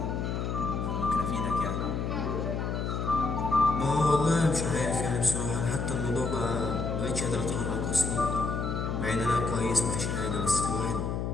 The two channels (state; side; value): noise; left; hum, 1 dB below the sound